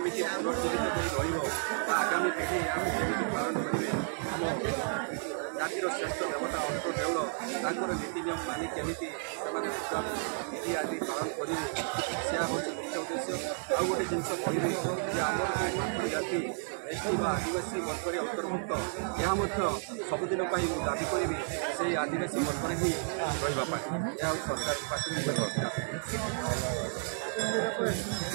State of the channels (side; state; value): left; silent; 56 dB below the other